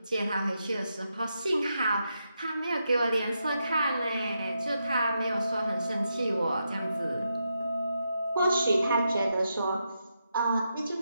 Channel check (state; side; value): inverted; both; correlation -0.84